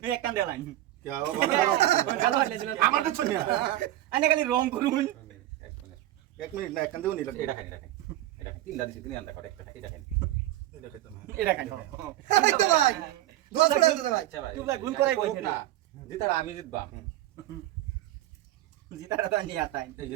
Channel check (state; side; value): quieter; left; 14.5 dB